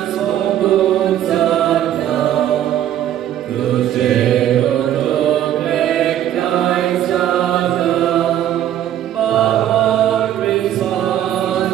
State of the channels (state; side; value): quieter; left; 11.5 dB